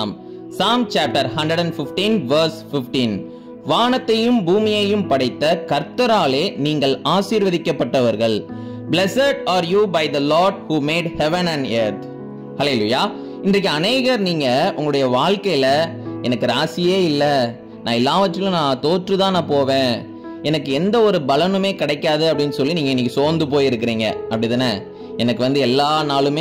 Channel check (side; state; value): both; identical; correlation 1.00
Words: Psalm chapter 115 verse 15. வானத்தையும் பூமியையும் படைத்த கர்த்தராலே நீங்கள் ஆசீர்வதிக்கப்பட்டவர்கள். Blessed are you by the Lord who made heaven and earth. ஹல்லேலூயா. இன்றைக்கு அநேகர் நீங்க உங்களுடைய வாழ்க்கையில எனக்கு ராசியே இல்லை, நான் எல்லாவற்றிலும் நான் தோற்றுதான் நான் போவேன், எனக்கு எந்த ஒரு பலனுமே கிடைக்காது அப்படின்னு சொல்லி நீங்க இன்னைக்கு சோர்ந்து போயிருக்கிறீங்க. அப்படிதானே? எனக்கு எல்லா